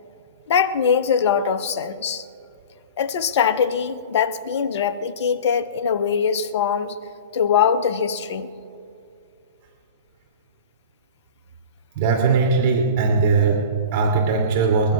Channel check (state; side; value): inverted; both; correlation -0.35